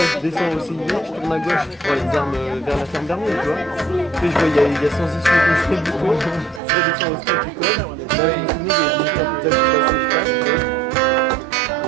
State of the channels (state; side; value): drops out; left; at 6.6 s